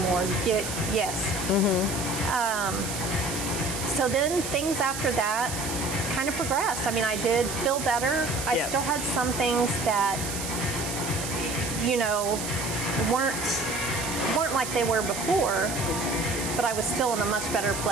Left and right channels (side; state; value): right; noise; hiss, 6 dB below the sound